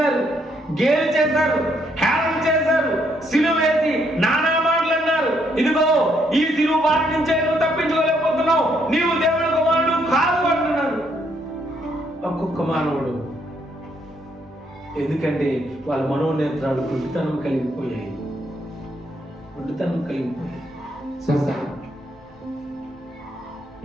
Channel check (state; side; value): normal; both; correlation 0.72